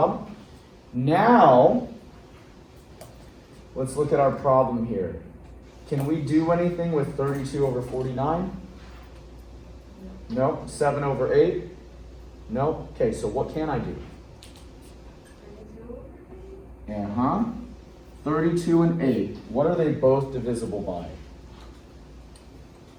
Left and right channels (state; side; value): identical; both; correlation 1.00